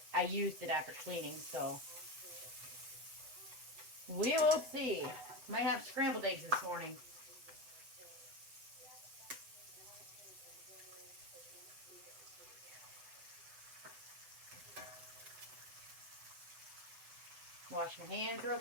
I used it after cleaning, so we will see. Might have scrambled eggs this morning. Wash my hands real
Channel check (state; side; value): late; left; 8.0 ms